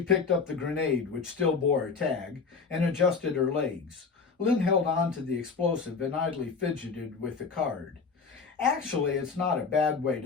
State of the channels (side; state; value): right; quieter; 5.0 dB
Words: picked up the grenade, which still bore a tag, and adjusted her legs. Lynn held on to the explosive and idly fidgeted with the card. Actually, it's not a bad way